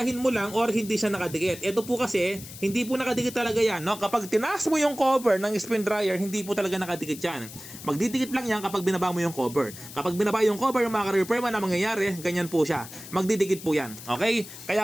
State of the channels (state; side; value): noise; left; hiss, 14 dB below the sound